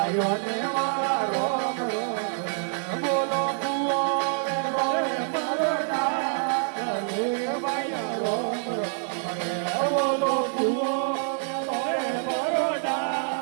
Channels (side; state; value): left; silent; 61 dB below the other